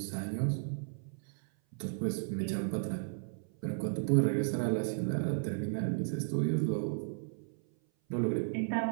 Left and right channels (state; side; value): silent; left; 55 dB below the other